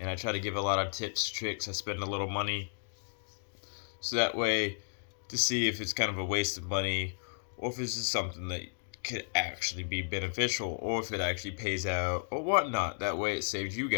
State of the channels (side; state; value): right; silent; digital silence